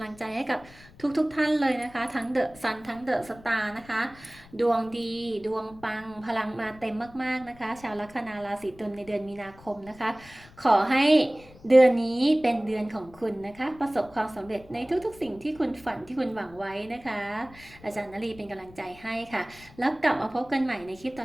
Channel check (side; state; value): left; noise; rumble, 23 dB below the sound